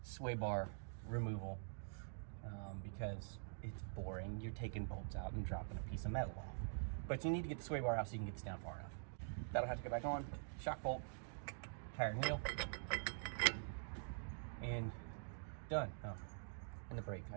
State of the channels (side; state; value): left; silent; digital silence